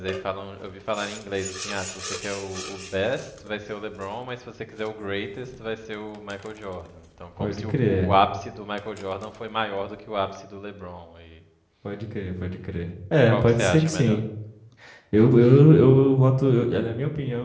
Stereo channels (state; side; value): identical; both; correlation 1.00